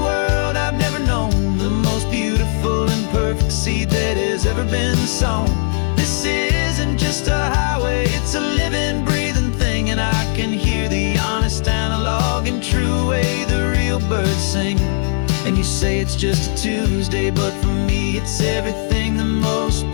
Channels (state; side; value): silent; right; digital silence